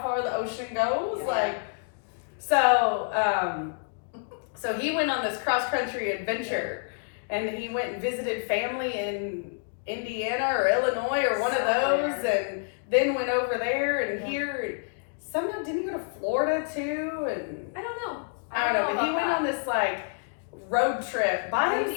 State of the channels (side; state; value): right; silent; digital silence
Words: far the ocean goes. Yeah. Like, so he went on this cross country adventure, and he went and visited family in Indiana or Illinois or one of those, and then went over there and here. Somehow didn't he go to Florida too? And I don't know. I don't know, but he about went that. on this like road trip by